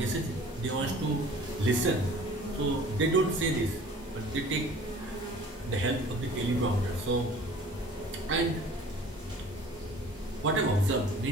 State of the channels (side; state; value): both; normal; correlation 0.48